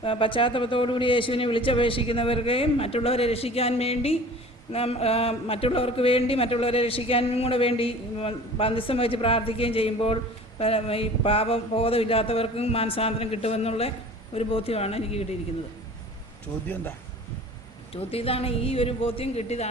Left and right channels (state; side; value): normal; both; correlation 0.43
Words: പശ്ചാത്തലത്തോടുകൂടി യേശുവിനെ വിളിച്ചപേക്ഷിക്കുന്നവർക്ക് മറ്റുള്ളവരെ രക്ഷിക്കാൻ വേണ്ടി മറ്റുള്ളവരെ രക്ഷിക്കാനും കൂടെ വേണ്ടി ബന്ധം വെച്ച് പ്രാർത്ഥിക്കുകയും ചെയ്യുമ്പോൾ ഈ പാപബോധമില്ലാത്തവർക്കും മാനസാന്തരം കിട്ടുമെന്നുള്ള ഒരു ബോധ്യമാണ് എനിക്ക് കിട്ടിയിരിക്കുന്നത്. ചോദ്യം എന്താ? ചോദ്യം ഇതാണ്, ഈ ഒരു ബോധ്യം